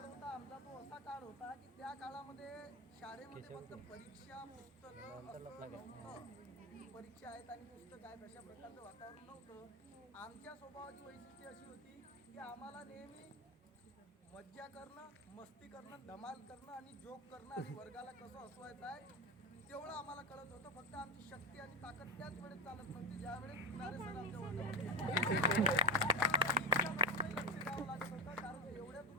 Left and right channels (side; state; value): both; normal; correlation 0.13